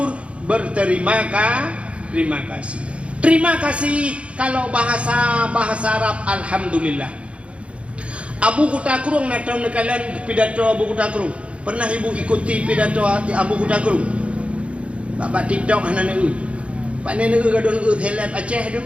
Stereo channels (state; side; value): late; left; 0.061 ms